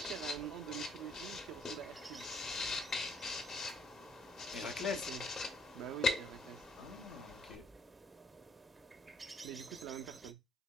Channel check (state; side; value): normal; both; correlation 0.66